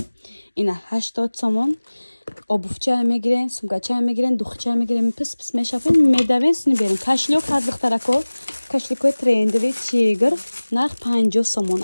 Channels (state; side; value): inverted; both; correlation -1.00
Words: اینا 80 سومون. آبوفچه هم میگیرن، سمکچه هم میگیرن، دوخچه هم میگیرن. پس میشافن میدوین سنی بیرون. کاشلیوک هست دخترا که کاشلیوک ترندوی چیگر نرخ 50 سومون